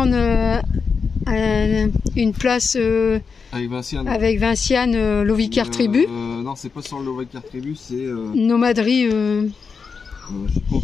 une place avec Vinciane, Lovicar Tribu. Non, c'est pas sur Lovicar Tribu, c'est... Nomaderie...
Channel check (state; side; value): quieter; right; 5.4 dB